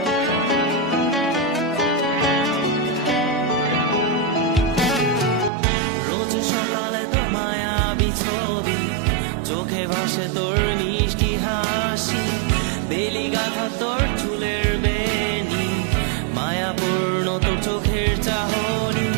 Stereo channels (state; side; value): drops out; left; at 5.5 s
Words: রোজ সকালে তোর মায়াবী ছবি, চোখে ভাসে তোর মিষ্টি হাসি, বেলি গাথা তোর চুলের বেনি, মায়াপূর্ণ তোর চোখের চাহনি।